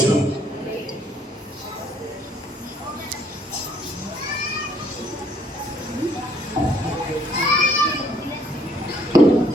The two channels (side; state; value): both; normal; correlation 0.65